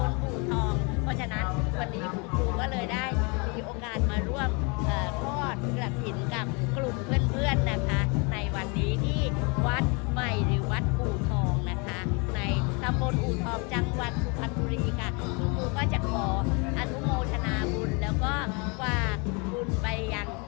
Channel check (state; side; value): quieter; right; 31.6 dB